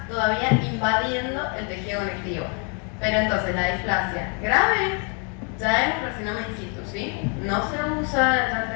todavía invadiendo el tejido conectivo. Pero entonces la displasia grave ya es un carcinoma in situ, ¿sí? No se usa ya el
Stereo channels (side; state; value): right; quieter; 37.8 dB